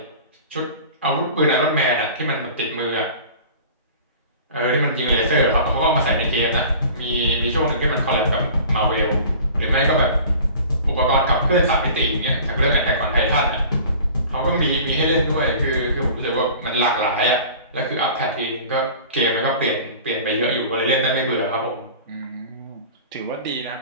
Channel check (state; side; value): inverted; both; correlation -0.42